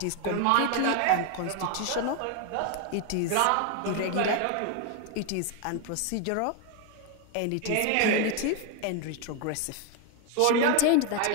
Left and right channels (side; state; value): both; different; correlation 0.01